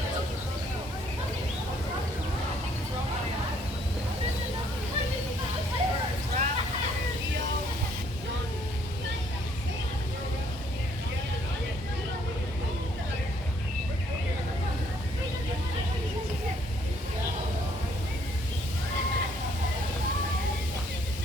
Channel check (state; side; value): normal; both; correlation 0.66